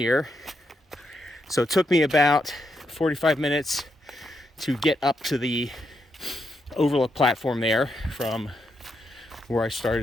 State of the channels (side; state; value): both; normal; correlation 0.81